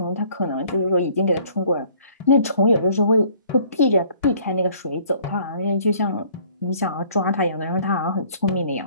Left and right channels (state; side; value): inverted; both; correlation -0.57